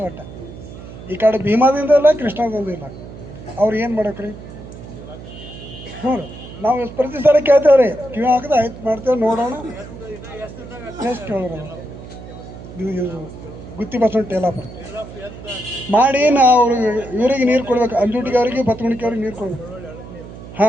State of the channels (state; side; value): noise; right; hum, 14 dB below the sound